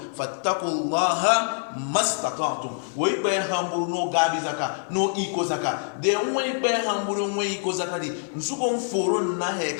fattaqullaha mastata'tum wo ibe hamburu no gabi zaka no iko zaka de wo ibe hamburu wo iko zaka di nsuko mforo na he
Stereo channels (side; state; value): right; silent; 58 dB below the other